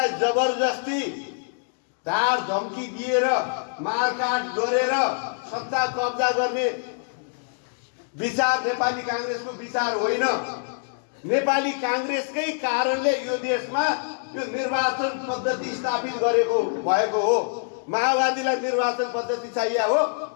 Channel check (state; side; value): silent; right; digital silence